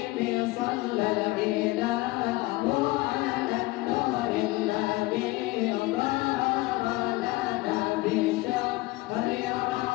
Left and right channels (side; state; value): right; quieter; 20.6 dB